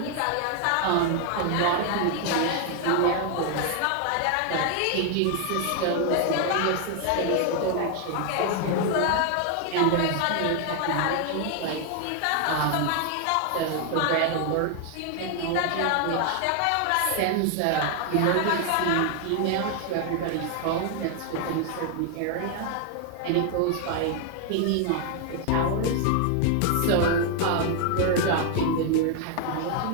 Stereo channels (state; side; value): different; both; correlation 0.00